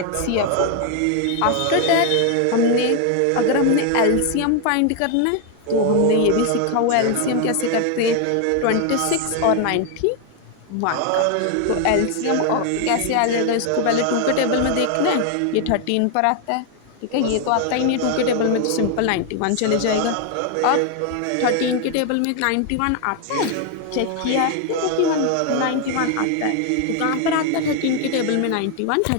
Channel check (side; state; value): both; different; correlation 0.01